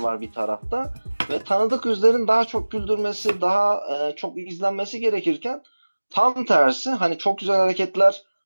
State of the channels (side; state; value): both; inverted; correlation -1.00